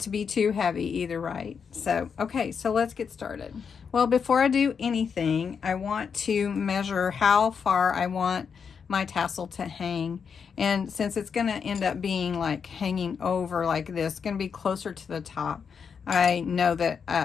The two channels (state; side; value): quieter; right; 6.4 dB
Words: to be too heavy either, right? So, okay, so let's get started. Well, before I do anything, I want to measure how far I want my tassel to hang. And since it's going to end up being like hanging over like this, going to be closer to the top, I know that